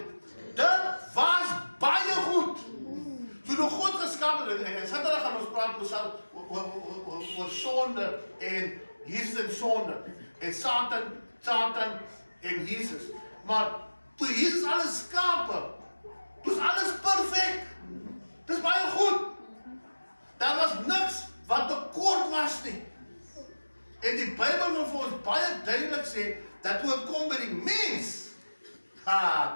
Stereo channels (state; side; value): inverted; both; correlation -1.00